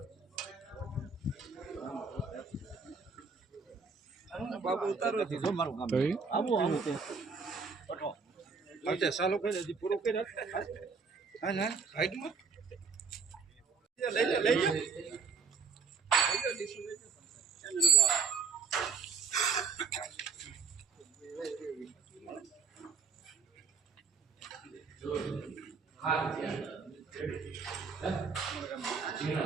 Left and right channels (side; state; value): left; quieter; 5.3 dB